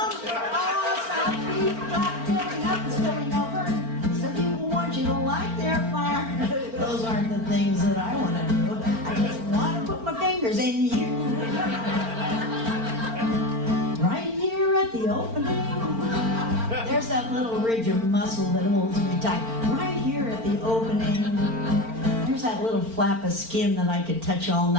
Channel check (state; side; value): late; left; 4.4 ms